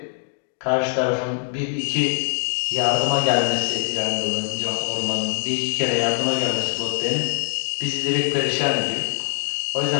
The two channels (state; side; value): silent; right; digital silence